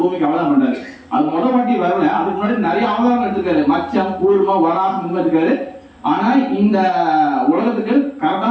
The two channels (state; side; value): identical; both; correlation 1.00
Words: அவதாரம் பண்றாரு. அது முதல் வாட்டி வரல, அதுக்கு முன்னாடி நிறைய அவதாரம் எடுத்திருக்காரு. மச்சம், கூர்மம், வராகம் இருக்காரு. ஆனா இந்த உலகத்துக்கு